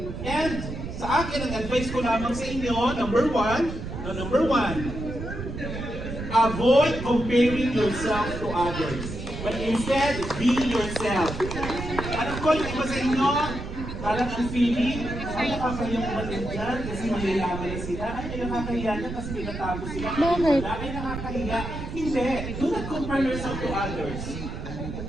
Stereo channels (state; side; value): noise; right; rumble, 7 dB below the sound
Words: And sa akin, ang advice ko lamang sa inyo, number one, avoid comparing yourself to others. But instead, be yourself. Alam ko, yung iba sa inyo, parang ang feeling, ay nakakayang umatin dyan kasi mayayaman na sila. Ay, nakakahiya na kasi may natago sila. Ay, nakakahiya. Hindi. Do not compare yourself to others.